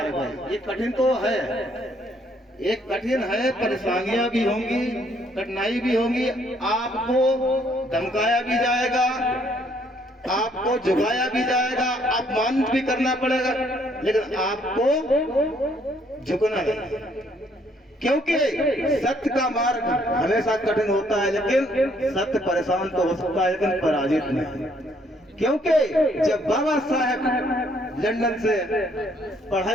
है। ये कठिन तो है, एक कठिन है, परेशानियां भी होंगी, कठिनाई भी होंगी, आपको धमकाया भी जाएगा, आपको झुकाया भी जाएगा, अपमानित भी करना पड़ेगा, लेकिन आपको झुकना नहीं, क्योंकि सत्य का मार्ग हमेशा कठिन होता है, लेकिन सत्य परेशान तो हो सकता है लेकिन पराजित नहीं। क्योंकि जब बाबा साहेब लंदन से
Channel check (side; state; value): both; normal; correlation 0.67